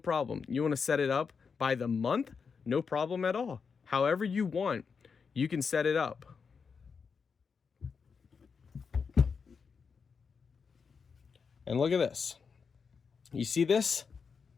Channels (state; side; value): quieter; right; 5.7 dB